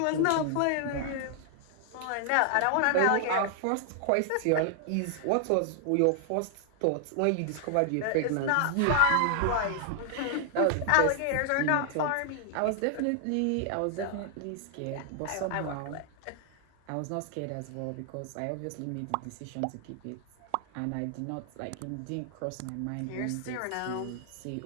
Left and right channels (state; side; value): different; both; correlation 0.00